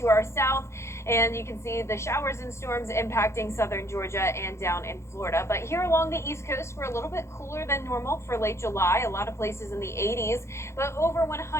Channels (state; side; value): late; right; 0.13 ms